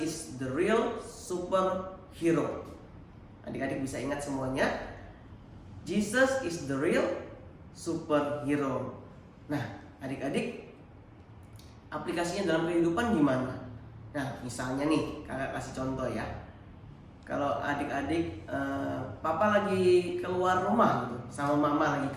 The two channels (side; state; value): both; identical; correlation 1.00